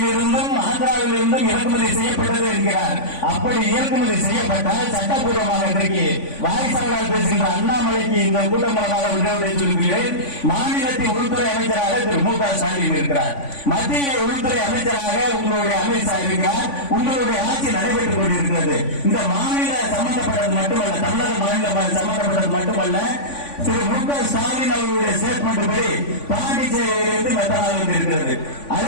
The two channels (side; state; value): right; late; 3.5 ms